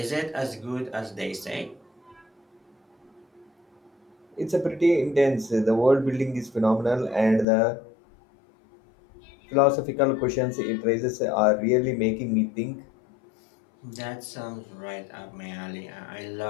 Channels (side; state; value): right; drops out; at 7.5 s